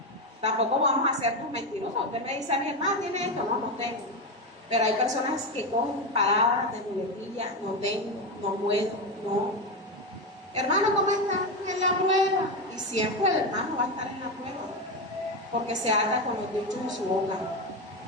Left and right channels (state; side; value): normal; both; correlation 0.14